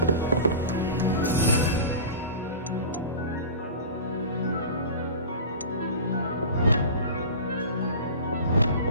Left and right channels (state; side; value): inverted; both; correlation -0.33